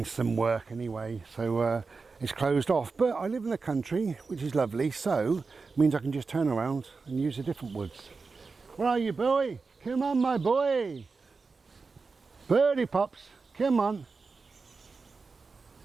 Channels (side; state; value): left; quieter; 4.4 dB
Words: some work anyway, so it's closed off. But I live in the country, which is lovely, so it means I can just turn around and use a different woods. Where are you, boy? Come on, my boy. Birdie pops, come on.